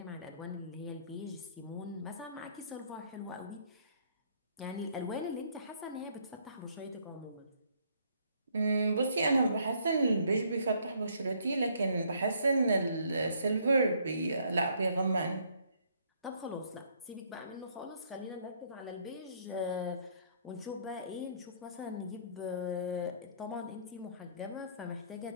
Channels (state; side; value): inverted; both; correlation -0.66